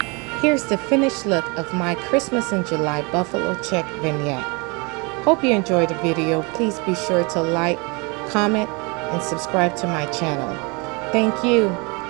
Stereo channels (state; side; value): quieter; left; 29.7 dB